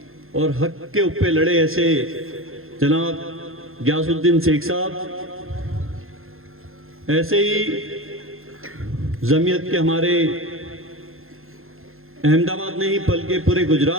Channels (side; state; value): left; late; 0.61 ms